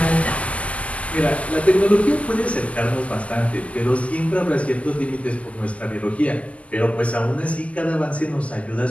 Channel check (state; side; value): late; right; 0.067 ms